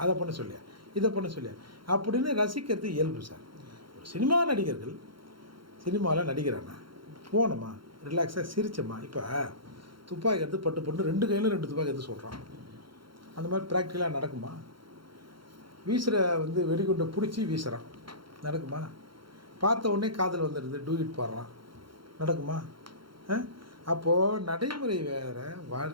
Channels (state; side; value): late; left; 0.73 ms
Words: அதை பண்ண சொல்லியா, இதை பண்ண சொல்லியா அப்படின்னு ரசிக்கிறது இயல்பு சார். ஒரு சினிமா நடிகர்கள் சினிமாவில் நடிக்கிறானா போனோமா ரிலாக்ஸாக சிரிச்சோமா. இப்போ துப்பாக்கி எடுத்து பட்டு 2 கையிலும் 2 துப்பாக்கி எடுத்து சொல்கிறான். அந்த மாதிரி ப்ராக்டிக்கலாக நடக்குமா? வீசுகிற வெடிகுண்டை பிடிச்சி வீசுகிறான், நடக்குமா? பார்த்த உடனே காதல் வந்துடுது, டூயிட் பாடுறான், நடக்குமா? அப்போது நடைமுறை வேறு,